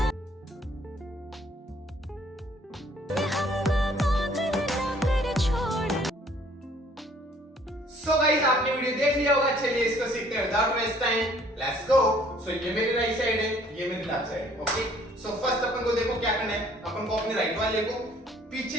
सो गाइस, आपने वीडियो देख लिया होगा। चलिए इसको सीखते हैं without waste time. Let's go. So ये मेरी राइट साइड है, ये मेरी लेफ्ट साइड है। ओके, सो फर्स्ट अपन को देखो क्या करना है। अपन को अपने राइट वाले को पीछे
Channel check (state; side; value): normal; both; correlation 0.59